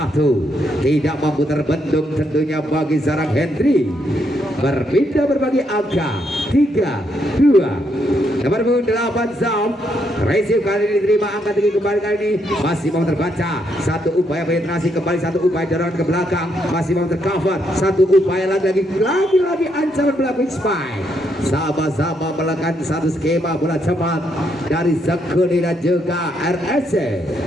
Tidak mampu terbendung tentunya bagi Zarang Hendry. Berpindah berbagi angka 3-2. Nomor 8 Zam. Receive kali ini diterima angka tinggi kembali kali ini. Masih mau terbaca. Satu upaya penetrasi kembali. Satu upaya dorongan ke belakang. Masih mau tercover. Satu upaya lagi ancaman belakang spike. Sama-sama melakukan satu skema bola cepat dari Sekuni dan juga RSC.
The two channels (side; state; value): both; normal; correlation 0.76